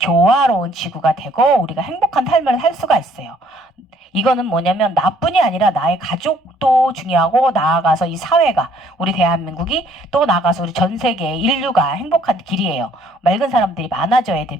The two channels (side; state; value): both; normal; correlation 0.63